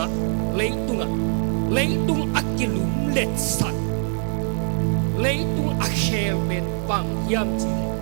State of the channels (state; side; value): silent; left; 63 dB below the other